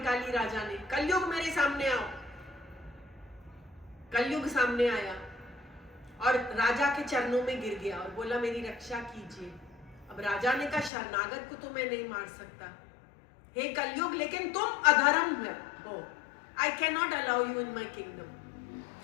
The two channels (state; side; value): drops out; right; at 10.9 s